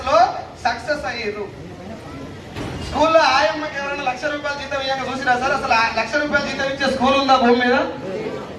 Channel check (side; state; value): both; identical; correlation 1.00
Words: లో సక్సెస్ అయ్యారు. స్కూల్లో ఆయమ్మకి ఎవరైనా ₹1,00,000 జీతం ఇవ్వగా చూసిరా సార్? అసలు ₹1,00,000 జీతం ఇచ్చే స్కూల్ ఉందా భూమి మీద?